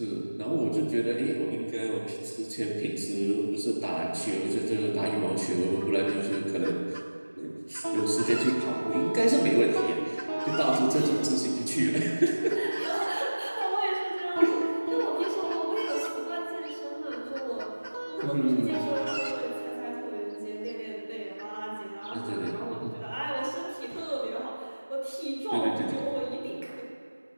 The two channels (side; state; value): both; inverted; correlation -1.00